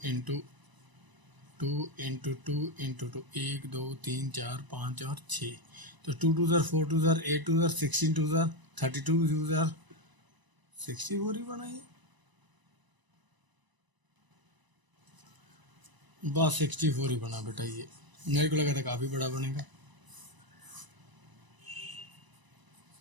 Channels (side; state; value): left; late; 1.0 ms